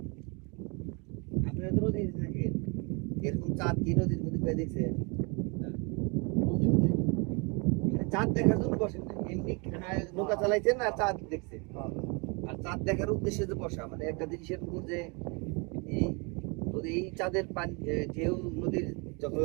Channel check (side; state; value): left; quieter; 31.7 dB